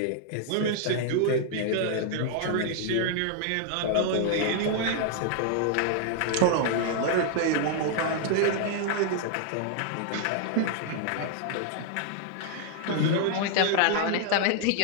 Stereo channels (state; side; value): different; both; correlation 0.00